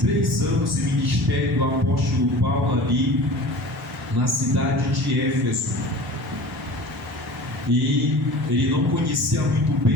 3 anos de ministério do apóstolo Paulo ali na cidade de Éfeso. E ele não conhecia muito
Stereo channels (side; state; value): both; normal; correlation 0.39